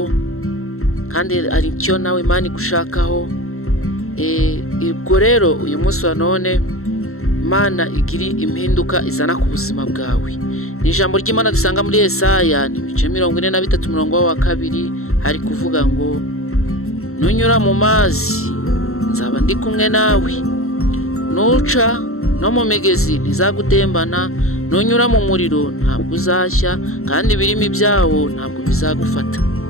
kandi hari icyo nawe Imana igushakaho. Ubwo rero uyu munsi wa none Imana igiri impinduka izana ku buzima bwawe. Ni ijambo ry'Imana dusanga muri Yesaya ibice 43 umurongo wa 2 hari kuvuga ngo nunyura mu mazi nzaba ndi kumwe nawe, nuca no mu migezi ntizagutembana, nunyura mu muriro ntabwo uzashya kandi ibirimi byawo ntabwo bizagufata.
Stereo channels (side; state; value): right; late; 0.63 ms